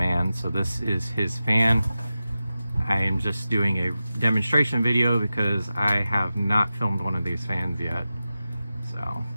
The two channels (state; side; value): inverted; both; correlation -0.93